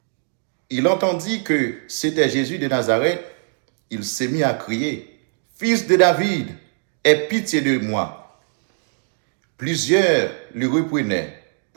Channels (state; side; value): silent; left; 56 dB below the other